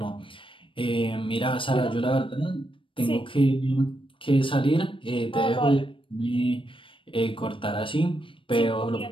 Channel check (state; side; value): late; right; 0.25 ms